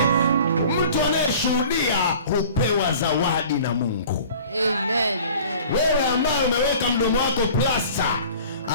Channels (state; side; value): inverted; both; correlation -0.46